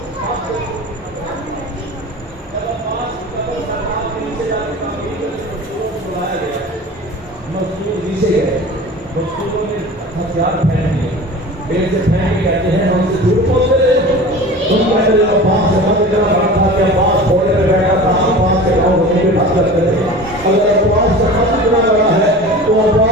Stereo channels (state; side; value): normal; both; correlation 0.37